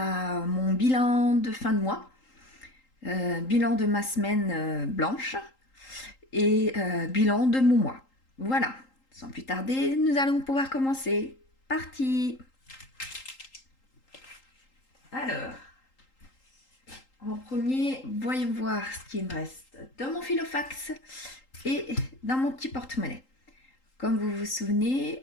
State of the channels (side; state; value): right; late; 3.8 ms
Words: mon bilan de fin de mois, bilan de ma semaine blanche et bilan de mon mois. Voilà, sans plus tarder, nous allons pouvoir commencer. Parti! Alors, en premier, voyons voir ce qui me reste dans mon filofax et dans mon petit porte-monnaie. Comme vous vous